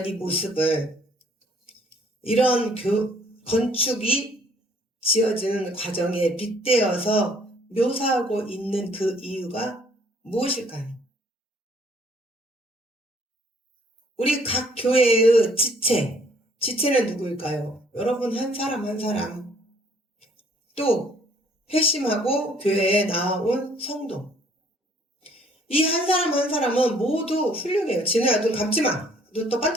이 모습을 이런 건축이 지어지는 과정에 빗대어서 묘사하고 있는 그 이유가 무엇일까요? 우리 각 교회의 지체는 누구일까요? 여러분 한 사람 한 사람, 또 회심하고 교회에 나온 성도, 이 한 사람 한 사람은 모두 훌륭해요. 진우야, 눈 감지 마. 눈 또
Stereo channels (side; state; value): both; normal; correlation 0.61